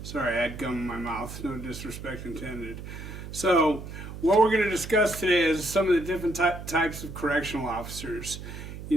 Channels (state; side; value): noise; right; hum, 10 dB below the sound